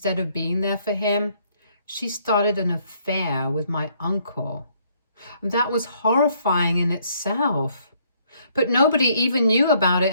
of being there for him, she started an affair with my uncle. That was horrifying in itself. But nobody even knew about it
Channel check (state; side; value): inverted; both; correlation -0.66